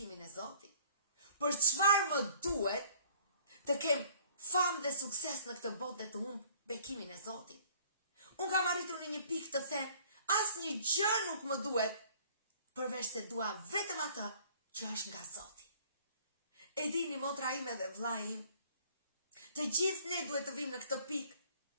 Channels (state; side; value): inverted; both; correlation -0.54